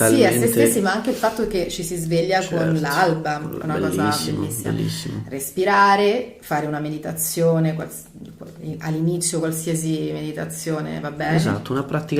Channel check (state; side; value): identical; both; correlation 1.00